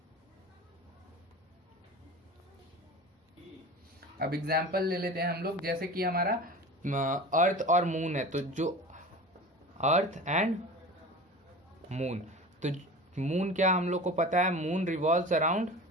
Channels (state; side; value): normal; both; correlation 0.35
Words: अब एग्जाम्पल ले लेते हैं हम लोग, जैसे कि हमारा अर्थ और मून है, तो जो अर्थ एंड मून, तो मून क्या हम लोग को पता है, moon revolves around